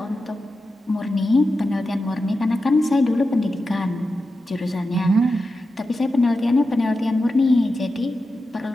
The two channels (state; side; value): normal; both; correlation 0.91